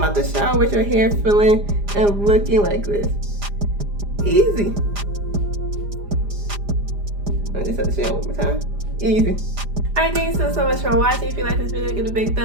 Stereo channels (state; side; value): late; left; 4.9 ms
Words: out the shower with your hair feeling and looking like this. Easy. I just have to say it one more time. Easy. Alright, thanks so much for watching. If you like this video, give it a big